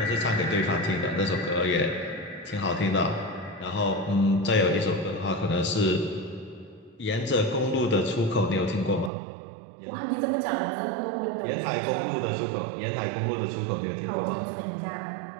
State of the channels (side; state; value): left; drops out; at 9.1 s